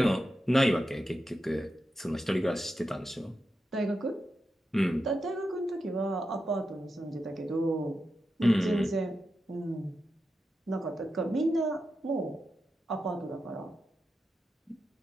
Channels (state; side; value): normal; both; correlation 0.88